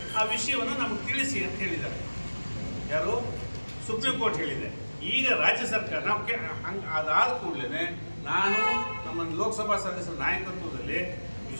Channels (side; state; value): both; inverted; correlation -1.00